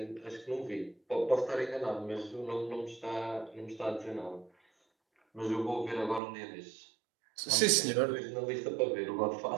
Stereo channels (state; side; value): drops out; left; at 6.2 s